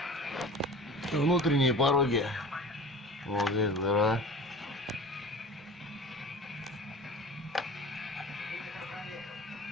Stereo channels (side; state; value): both; normal; correlation 0.38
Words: Внутренние пороги. Вот здесь дыра.